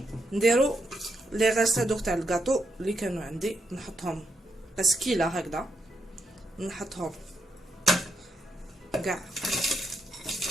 نديرو لي غاست هادوك تاع الكاطو اللي كانوا عندي، نحطهم بسكيله هكذا، نحطهم كاع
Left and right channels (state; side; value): normal; both; correlation 0.80